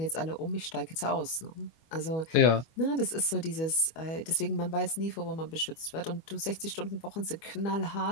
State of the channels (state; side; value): late; right; 25 ms